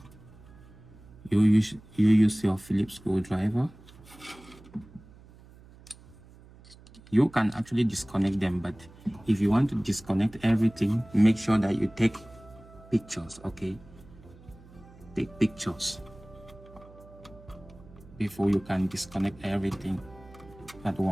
you use your Phillips screwdriver. You can actually disconnect them, but if you want to disconnect everything, make sure that you take pictures, okay? Take pictures before you can disconnect everything at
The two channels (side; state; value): right; noise; hum, 22 dB below the sound